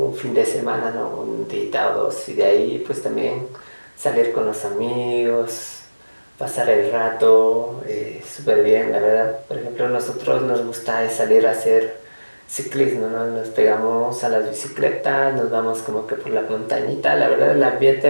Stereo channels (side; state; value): both; inverted; correlation -1.00